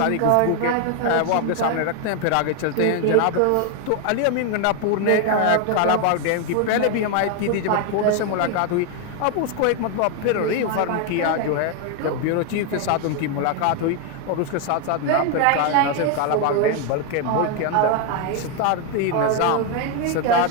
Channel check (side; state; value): both; different; correlation 0.01